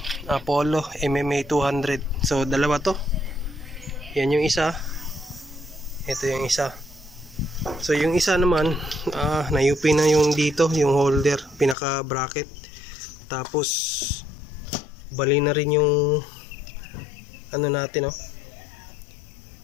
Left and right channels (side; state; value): right; drops out; at 11.8 s